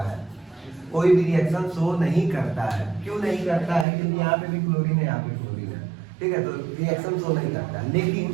है। कोई भी रिएक्शन शो नहीं करता है। क्यों नहीं करता है? क्योंकि यहाँ पे भी क्लोरीन है, यहाँ पे क्लोरीन है, ठीक है, तो रिएक्शन शो नहीं करता।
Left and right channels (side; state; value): left; drops out; at 3.9 s